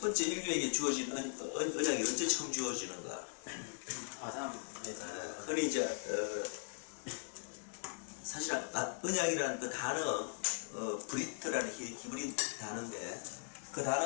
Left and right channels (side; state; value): right; silent; digital silence